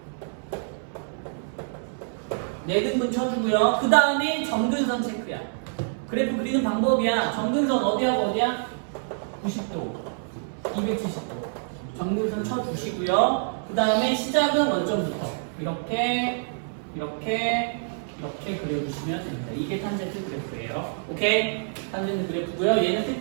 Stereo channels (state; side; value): silent; left; 59 dB below the other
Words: 네 등분 쳐주고요. 그 다음에 점근선 체크야. 그래프 그리는 방법이야. 점근선 어디하고 어디야? 90도, 270도. 점근선 쳐주시고요. 그 다음에 시작은 원점부터 이렇게 그려주시면 됩니다. 이게 탄젠트 그래프예요. 오케이? 탄젠트 그래프고요. 얘는